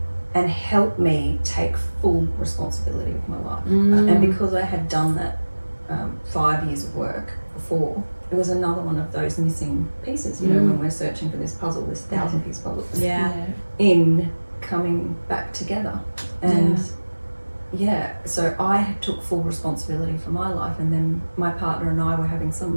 and help me take full responsibility of my life. And because I had done that 5 years of work before, it was another one of those missing pieces, when we're searching for this puzzle, this 1,000-piece puzzle, in coming back together. And so I took full responsibility for my life, and then my partner and I were having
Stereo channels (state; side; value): inverted; both; correlation -1.00